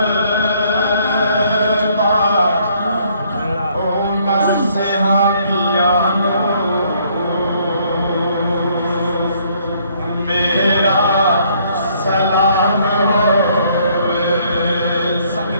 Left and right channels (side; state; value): both; inverted; correlation -0.65